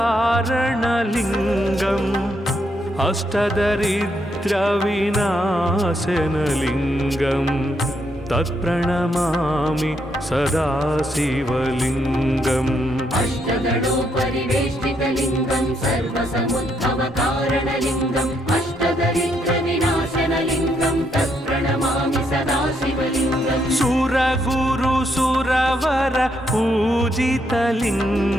अष्टदरिद्रविनाशनलिङ्गं तत्प्रणमामि सदा शिवलिङ्गम् अष्टदलोपरिवेष्टितलिङ्गं सर्वसमुद्भवकारणलिङ्गम् अष्टदरिद्रविनाशनलिङ्गं तत्प्रणमामि सदा शिवलिङ्गम् सुरगुरुसुरवर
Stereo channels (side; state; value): both; normal; correlation 0.76